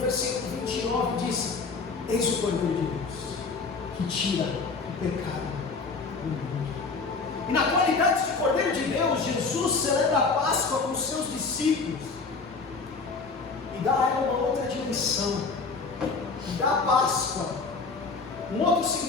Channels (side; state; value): right; quieter; 4.4 dB